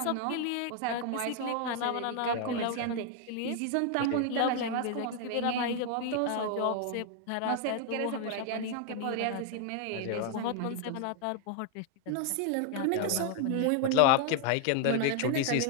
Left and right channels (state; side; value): different; both; correlation 0.00